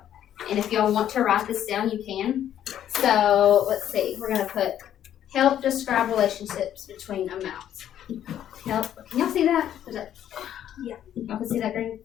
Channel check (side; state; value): right; quieter; 10.7 dB